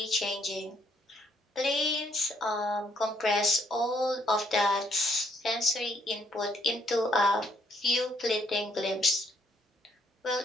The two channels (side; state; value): both; normal; correlation 0.70